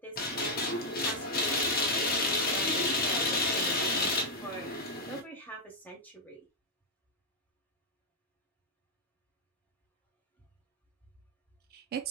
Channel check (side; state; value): both; normal; correlation -0.02